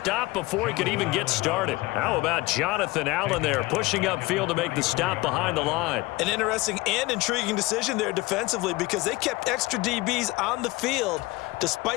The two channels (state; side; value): quieter; right; 21.3 dB